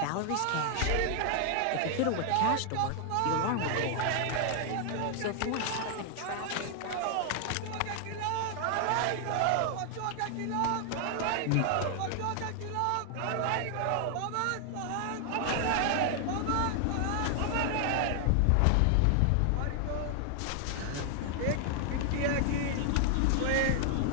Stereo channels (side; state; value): both; different; correlation 0.00